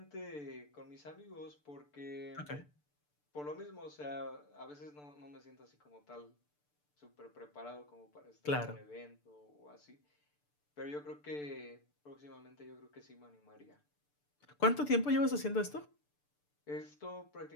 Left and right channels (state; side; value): late; right; 6.8 ms